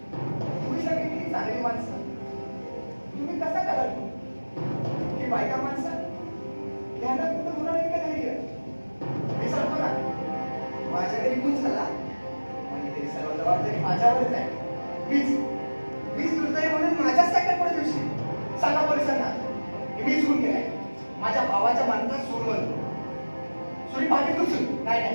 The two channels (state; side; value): inverted; both; correlation -1.00